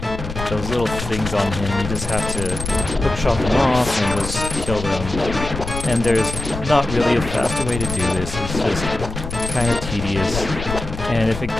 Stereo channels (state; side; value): noise; left; rumble, 7 dB below the sound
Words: those little things on him, you just have to hookshot them off and just kill them. And there's not really a faster way to do this. It's just kind of tedious. And if